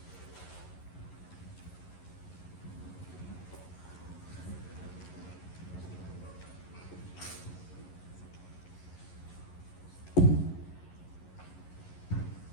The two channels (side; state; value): right; late; 11 ms